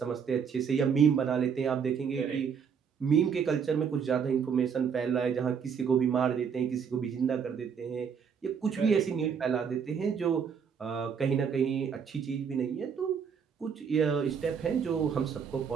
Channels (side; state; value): left; quieter; 6.9 dB